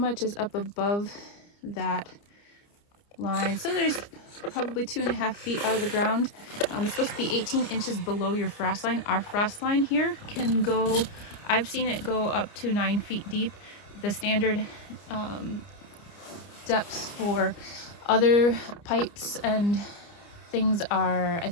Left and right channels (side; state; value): right; late; 29 ms